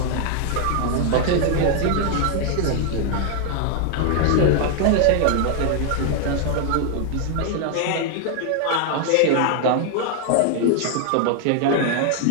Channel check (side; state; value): both; different; correlation 0.00